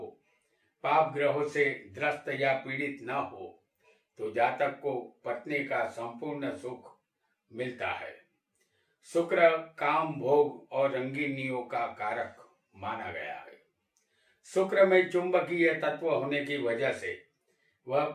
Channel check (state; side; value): identical; both; correlation 1.00